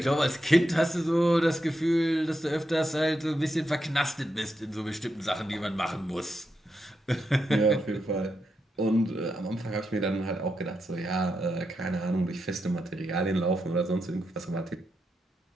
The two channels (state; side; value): normal; both; correlation 0.85